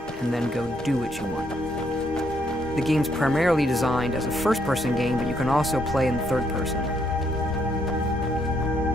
and then go do what you want. The game's primarily designed as a first-person game, but you can also play in third person.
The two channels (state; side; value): normal; both; correlation 0.73